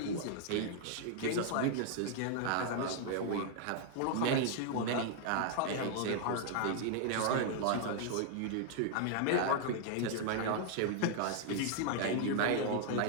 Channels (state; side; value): different; both; correlation 0.00